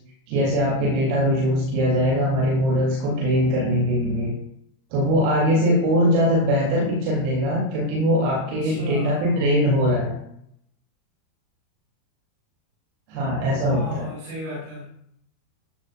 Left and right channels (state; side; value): late; left; 38 ms